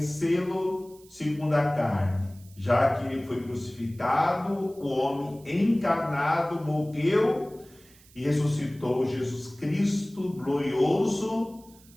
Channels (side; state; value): right; noise; hiss, 26 dB below the sound